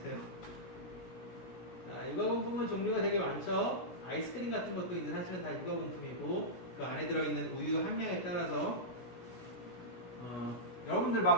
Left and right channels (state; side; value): late; right; 16 ms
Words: 자, 육아공품은 종류가 되게 많죠. 아이스크림 같은 것도 이제 사실은 다 육아공품이고, 그 안에 들어있는 우유 함량에 따라서 여러분들